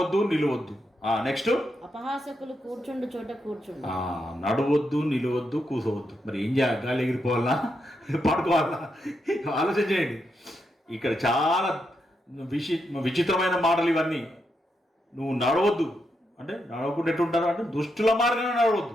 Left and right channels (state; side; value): normal; both; correlation 0.82